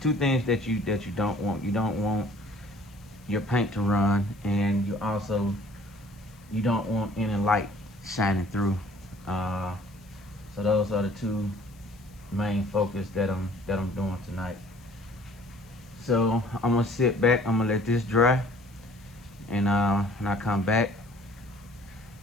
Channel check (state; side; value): noise; left; hiss, 29 dB below the sound